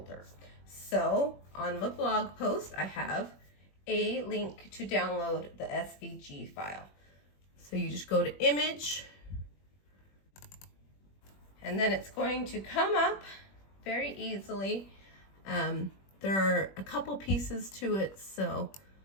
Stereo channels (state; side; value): late; right; 21 ms